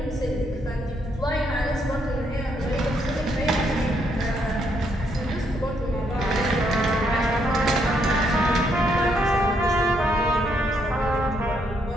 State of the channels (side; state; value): both; normal; correlation 0.74